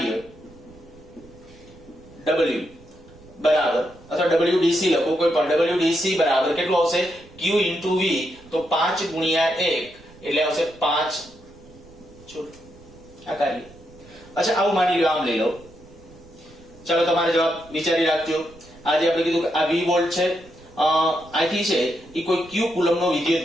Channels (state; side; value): noise; right; rumble, 23 dB below the sound